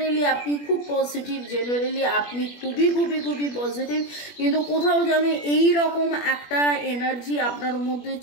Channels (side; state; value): right; late; 21 ms